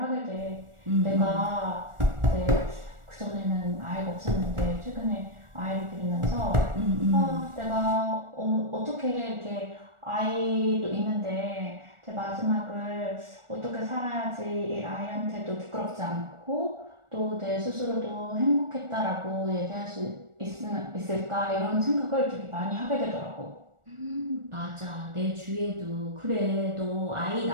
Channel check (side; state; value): left; late; 1.4 ms